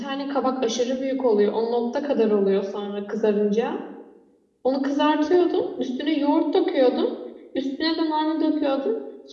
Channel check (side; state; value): both; identical; correlation 1.00